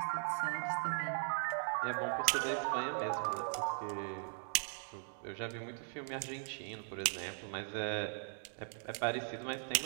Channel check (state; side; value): silent; left; 52 dB below the other